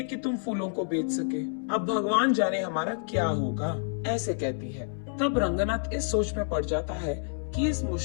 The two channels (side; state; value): right; silent; 59 dB below the other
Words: कि तुम फूलों को बेच सके। अब भगवान जाने हमारा क्या होगा, ऐसे कहती है। तब रंगनाथ इस सोच में पड़ जाता है कि इस